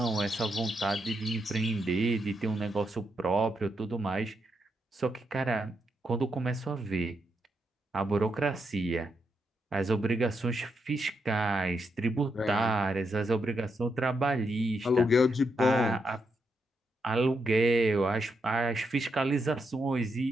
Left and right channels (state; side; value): normal; both; correlation 0.82